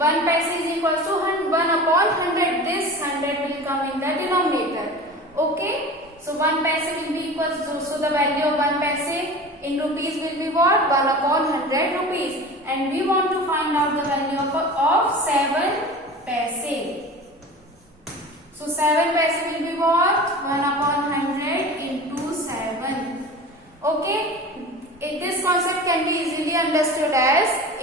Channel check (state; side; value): normal; both; correlation 0.36